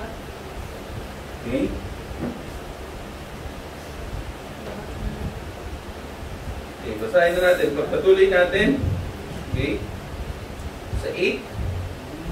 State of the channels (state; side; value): identical; both; correlation 1.00